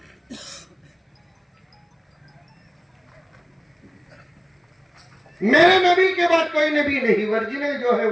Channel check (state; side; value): identical; both; correlation 1.00